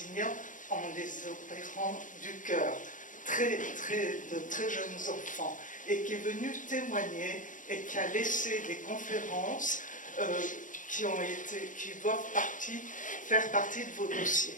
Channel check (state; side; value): late; right; 0.38 ms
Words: en les opérant du cœur, de très jeunes enfants, et qui est venu témoigner et qui a laissé des conférences qui doivent faire partie de vos dossiers.